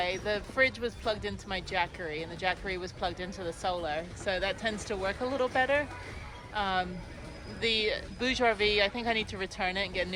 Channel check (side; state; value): both; identical; correlation 1.00